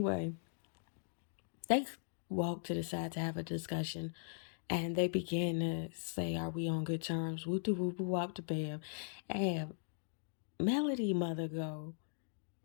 they walked to the side to have a discussion. And they began to say, are we on good terms? Woo doo woo boo wop the bam. And Melody mother go,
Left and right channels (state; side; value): silent; right; digital silence